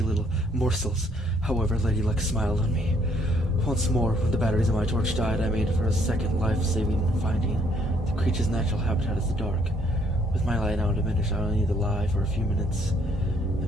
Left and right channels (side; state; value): both; normal; correlation 0.68